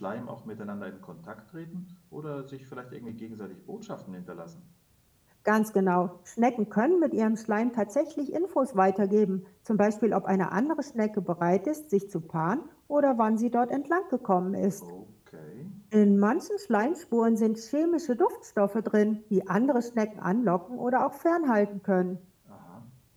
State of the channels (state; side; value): identical; both; correlation 1.00